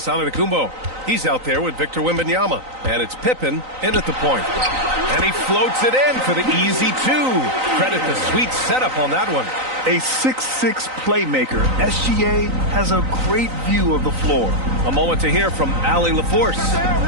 Antetokounmpo. He's out there with Victor Wembanyama. And it's Pippen in at the point. And he floats it in for the easy 2. Credit the sweet setup on that one. A 6'6" playmaker, SGA has a great view of the floor. A moment to hear from Allie LaForce.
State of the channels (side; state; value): left; late; 3.9 ms